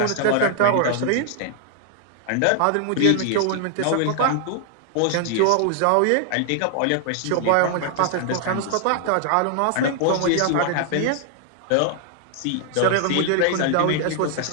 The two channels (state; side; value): different; both; correlation 0.00